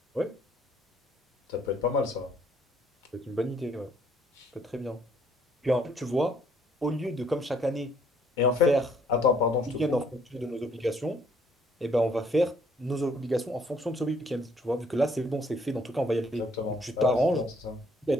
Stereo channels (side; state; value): both; normal; correlation 0.64